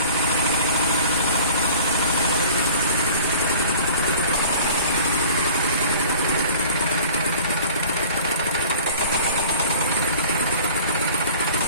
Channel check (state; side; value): inverted; both; correlation -0.45